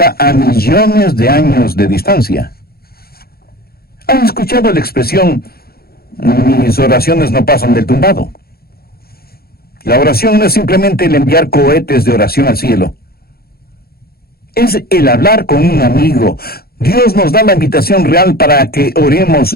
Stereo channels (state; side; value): late; right; 0.44 ms